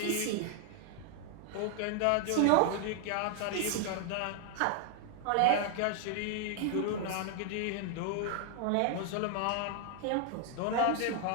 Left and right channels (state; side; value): different; both; correlation 0.00